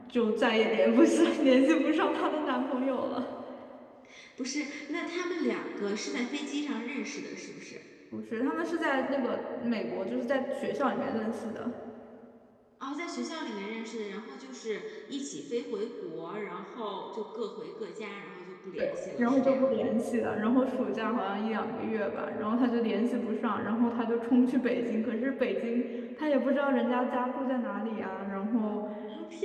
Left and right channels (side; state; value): both; identical; correlation 1.00